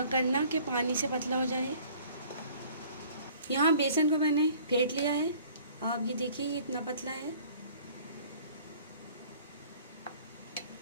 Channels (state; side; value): inverted; both; correlation -0.53